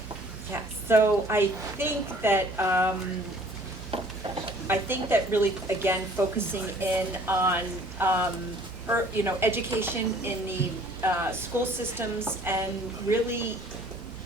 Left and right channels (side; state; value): both; normal; correlation 0.54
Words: Yeah, so I think that really, again, focusing in on education in the school systems, and really